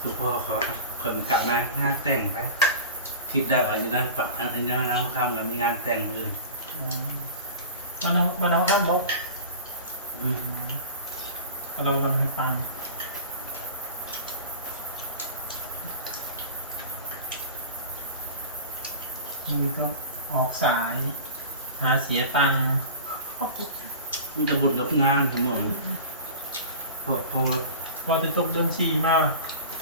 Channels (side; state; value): both; inverted; correlation -0.35